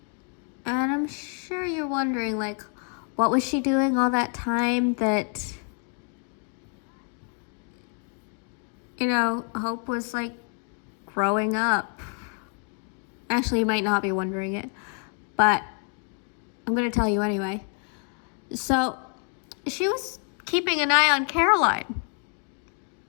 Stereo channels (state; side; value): quieter; right; 39.6 dB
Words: And I'm sure you're wondering, what was she doing all that time that, Hope was, growing up? Actually, you might not be wondering it, but I'm going to tell you anyway. So, she was keeping an eye on Caroline